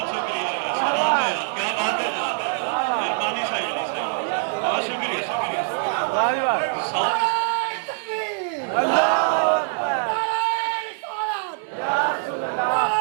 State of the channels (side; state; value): left; silent; 59 dB below the other